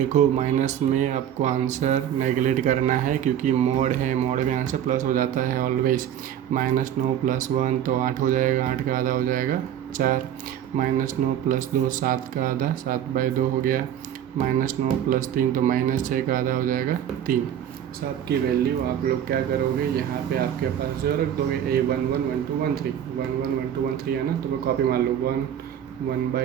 माइनस में आपको आंसर नेगलेक्ट करना है क्योंकि मोड है, मोड में आंसर प्लस हो जाता है ऑलवेज। -9 + 1 तो 8 हो जाएगा, 8 का आधा हो जाएगा 4। -9 + 2 7 का आधा 7/2 हो गया। -9 + 3 तो -6 का आधा हो जाएगा 3। सब की वैल्यू आप लोग क्या करोगे, यहाँ पे आपके पास जो रख दोगे a1 1 1 2 1 3 1 1 1 2 1 3 है ना, तो मैं कॉपी मार लो 1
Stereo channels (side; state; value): left; quieter; 10.2 dB